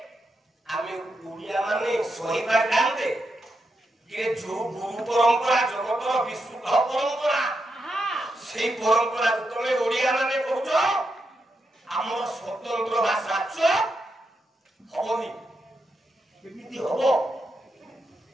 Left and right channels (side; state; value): both; normal; correlation 0.84